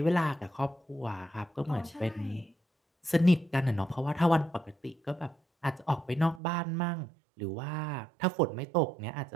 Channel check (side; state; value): left; drops out; at 6.4 s